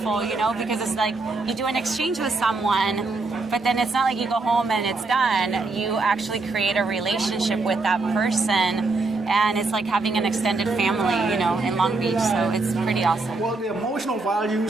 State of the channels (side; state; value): left; quieter; 3.5 dB